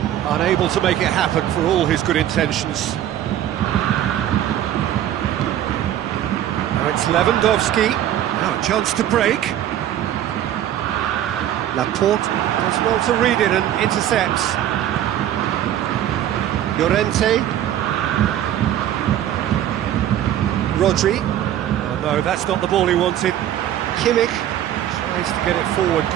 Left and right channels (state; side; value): quieter; left; 11.6 dB